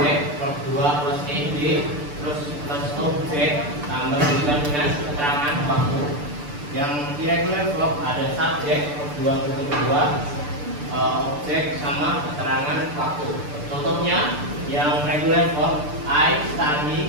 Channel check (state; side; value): late; left; 6.8 ms